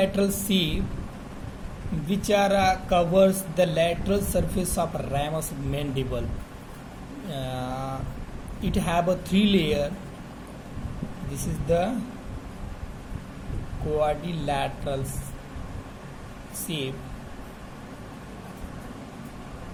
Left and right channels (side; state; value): both; identical; correlation 1.00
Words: shape which are covers the lateral surface of ramus mandible. It have a three layer. This is the quadrilateral shape,